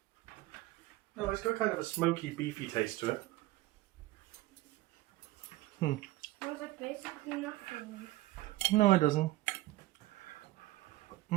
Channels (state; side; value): quieter; left; 17.5 dB